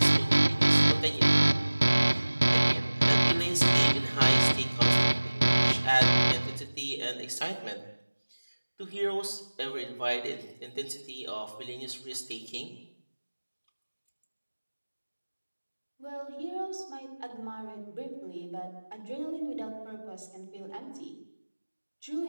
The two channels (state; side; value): inverted; both; correlation -1.00